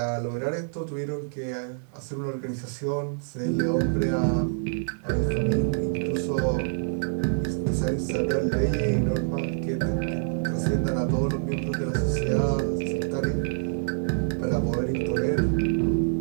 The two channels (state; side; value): silent; left; digital silence